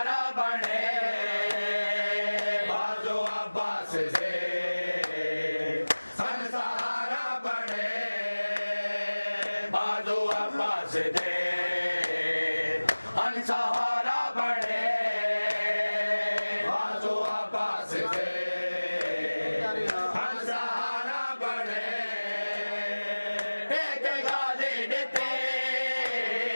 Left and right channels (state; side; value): inverted; both; correlation -1.00